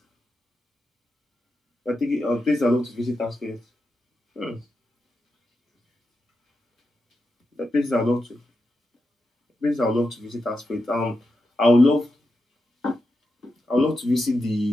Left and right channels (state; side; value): normal; both; correlation 0.88